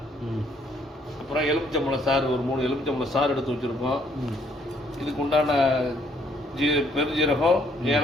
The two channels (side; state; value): both; normal; correlation 0.67